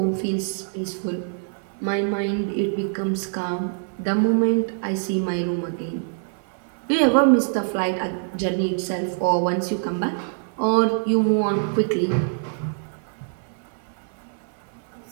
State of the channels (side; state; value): left; silent; digital silence